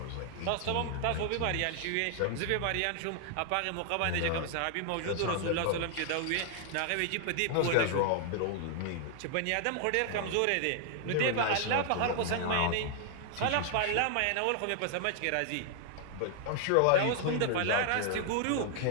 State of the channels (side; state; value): both; different; correlation 0.00